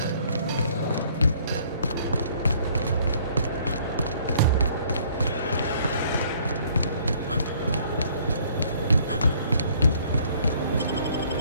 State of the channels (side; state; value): both; inverted; correlation -0.60